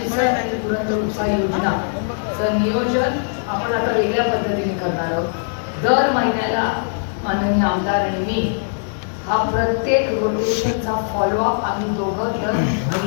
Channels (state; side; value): silent; right; 66 dB below the other